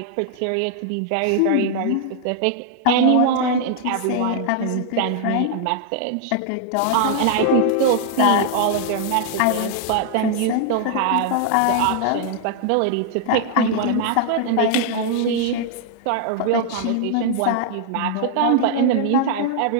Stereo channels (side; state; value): both; different; correlation 0.00